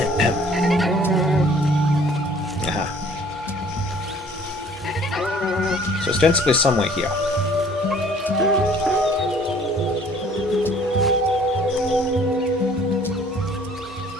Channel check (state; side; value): normal; both; correlation 0.55